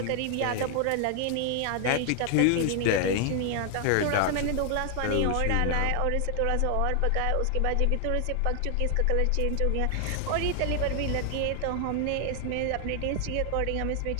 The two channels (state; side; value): different; both; correlation 0.00